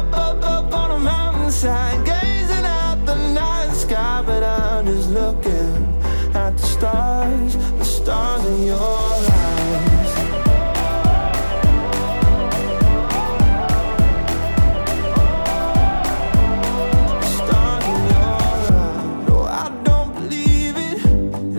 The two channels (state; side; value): inverted; both; correlation -1.00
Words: on a mountainside, gazing at the night sky, but I'm just looking at the stars in your eyes. Stars in your eyes. No, I don't believe it.